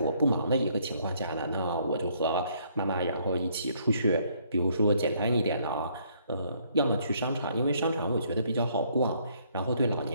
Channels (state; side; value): inverted; both; correlation -0.67